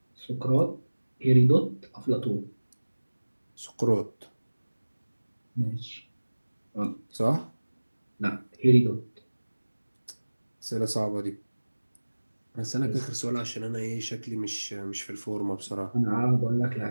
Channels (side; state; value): both; inverted; correlation -1.00